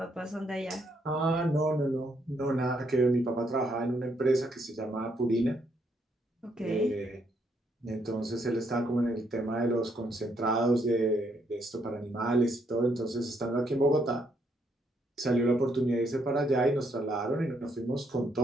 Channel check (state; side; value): normal; both; correlation 0.73